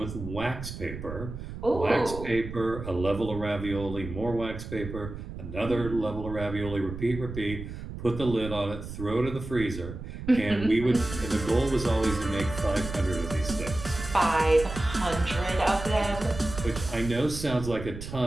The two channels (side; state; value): right; noise; rumble, 9 dB below the sound